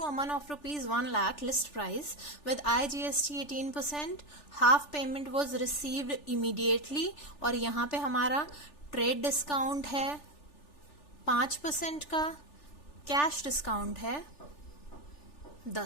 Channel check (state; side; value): late; right; 3.4 ms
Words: Aman of ₹1 lakh list price with IGST 18%, half payment was received immediately. और यहाँ पे हमारा ट्रेड डिस्काउंट है 5% का, कैश डिस्काउंट है